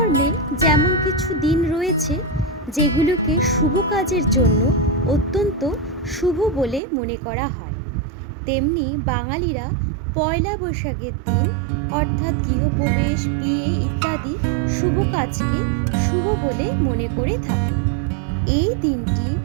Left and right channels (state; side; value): drops out; left; at 6.8 s